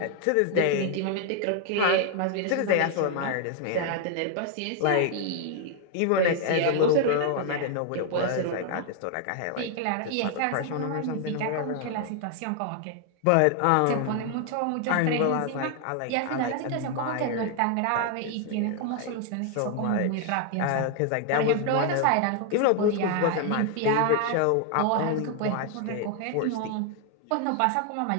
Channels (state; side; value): different; both; correlation 0.00